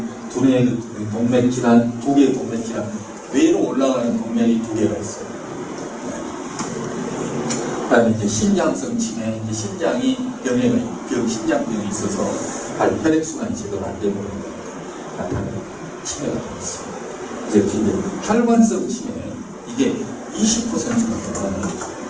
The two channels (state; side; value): identical; both; correlation 1.00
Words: 두뇌 동맥 질환, 두 개의 동맥 질환, 뇌로 올라가는 동맥이 두 개가 있어요. 그다음에 이제 심장성 치매, 이제 심장이 심장병이 있어서 혈액순환이 제대로 안 되는 나타나는 치매가 되겠습니다. 그래서 이제 혈관성 치매, 이게 20%가 넘어가는 거죠.